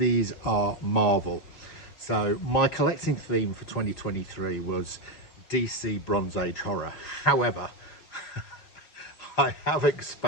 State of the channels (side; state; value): right; late; 5.4 ms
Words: are Marvel. So my collecting theme for 2023 was DC Bronze Age horror. However, I have